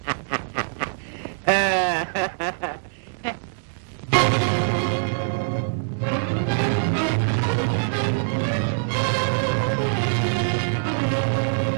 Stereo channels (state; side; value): silent; left; digital silence